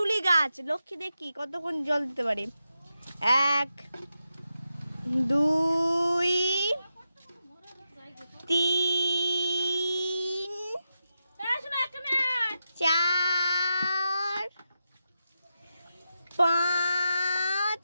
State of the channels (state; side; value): inverted; both; correlation -0.88